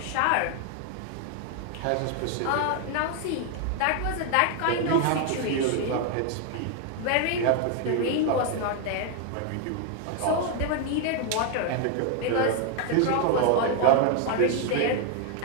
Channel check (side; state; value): both; different; correlation 0.00